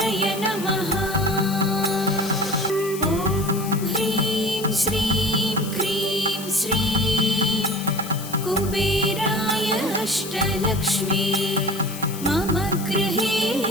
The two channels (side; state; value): left; noise; hiss, 12 dB below the sound